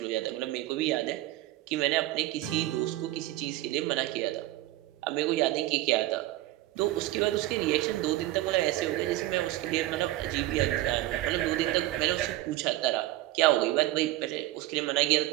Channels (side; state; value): left; quieter; 16.4 dB